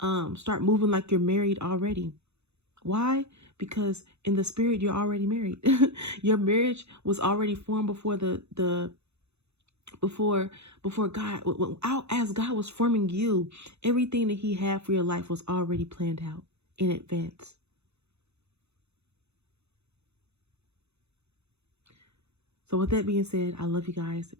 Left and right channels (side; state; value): left; late; 0.81 ms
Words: start moving like you're married already. Why? Because in the spirit, you're already married. Your marriage was already formed before before God, as God was forming you. Everything that he had for your life was already planned out in advance. So with that being said, I love you guys.